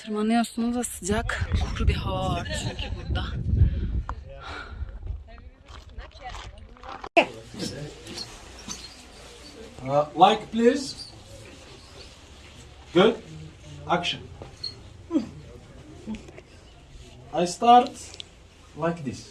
da sıcak. Kuru bir hava var çünkü burada. Like please. Good. Action. I start like this.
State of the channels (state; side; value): identical; both; correlation 1.00